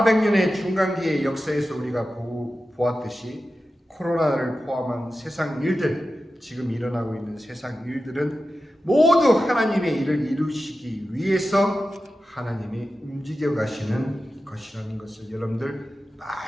중간기의 역사에서 우리가 보았듯이 코로나를 포함한 세상 일들, 지금 일어나고 있는 세상 일들은 모두 하나님의 일을 이루시기 위해서 하나님이 움직여 가시는 것이라는 것을 여러분들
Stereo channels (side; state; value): both; normal; correlation 0.93